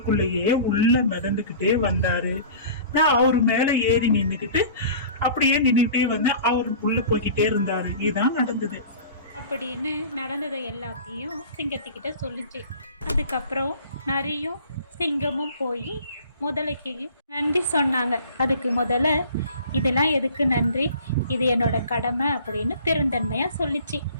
உள்ள மிதந்துகிட்டே வந்தாரு. நான் அவரு மேல ஏறி நின்னுக்கிட்டு அப்படியே நின்றுட்டே வந்தேன். அவரு உள்ள போய்கிட்டே இருந்தாரு. இதுதான் நடந்தது அப்படின்னு நடந்ததை எல்லாத்தையும் சிங்கத்துக்கிட்ட சொல்லிச்சு. அதுக்கப்புறம் நரியும் சிங்கமும் போய் முதலைக்கு நன்றி சொன்னாங்க. அதுக்கு முதல்ல இதெல்லாம் எதுக்கு நன்றி, இது என்னோட கடமை அப்படின்னு பெருந்தன்மையாக சொல்லிச்சு.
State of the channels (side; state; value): both; inverted; correlation -0.43